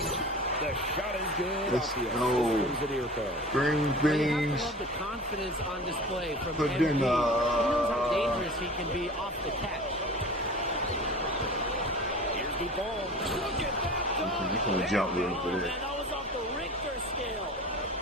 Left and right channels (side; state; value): both; normal; correlation 0.38